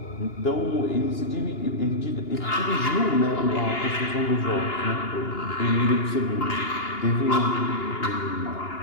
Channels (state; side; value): late; right; 2.9 ms